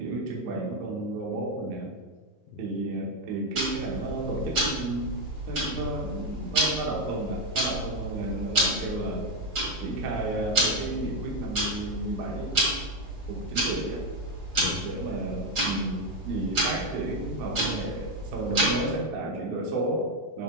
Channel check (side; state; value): both; normal; correlation 0.06